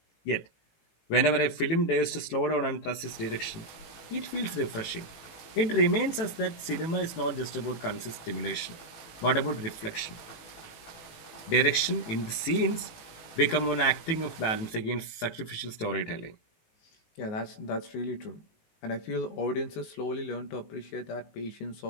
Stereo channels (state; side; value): late; right; 18 ms